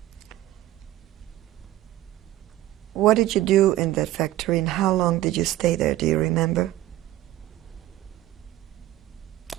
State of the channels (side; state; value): left; quieter; 14.9 dB